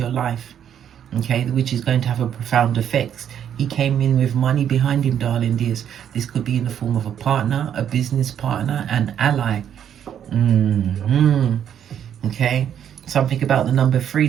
your life, okay, which is going to have a profound effect. He came in with money behind him, darling dears. This could be in the form of a partner, a business partner, an ally. Okay. Something about the number 3.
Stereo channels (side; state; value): left; quieter; 9.3 dB